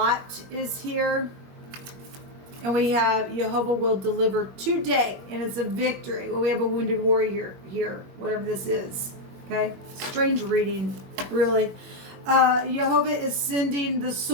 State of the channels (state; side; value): late; left; 21 ms